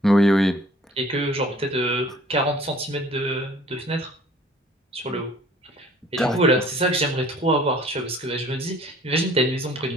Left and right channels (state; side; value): normal; both; correlation 0.53